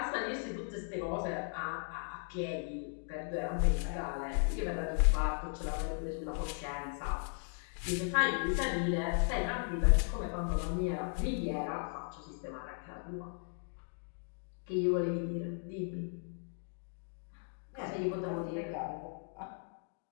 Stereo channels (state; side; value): silent; right; 53 dB below the other